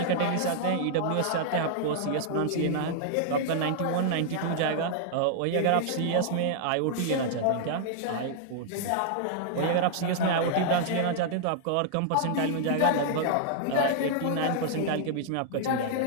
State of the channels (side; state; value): both; different; correlation -0.01